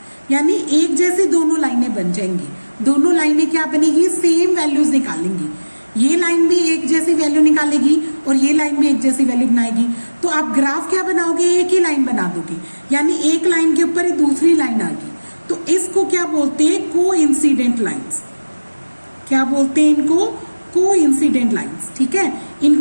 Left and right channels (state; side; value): inverted; both; correlation -1.00